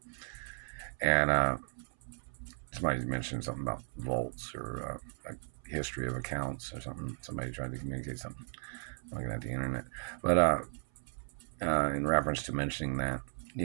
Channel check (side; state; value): left; silent; 54 dB below the other